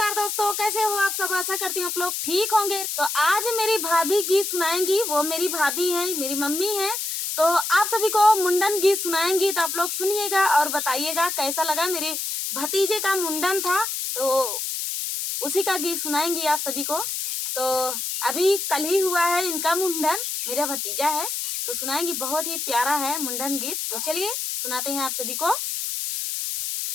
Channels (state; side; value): noise; left; hiss, 3 dB below the sound